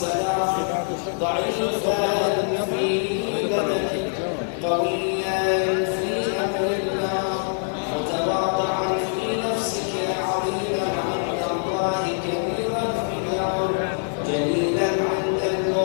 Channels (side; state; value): right; silent; 63 dB below the other